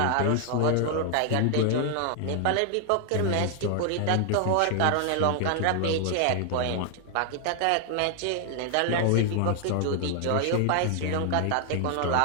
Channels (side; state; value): both; different; correlation 0.00